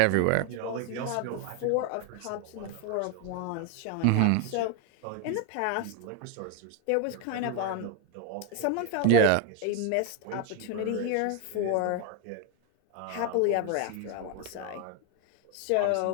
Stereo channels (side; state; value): both; different; correlation 0.01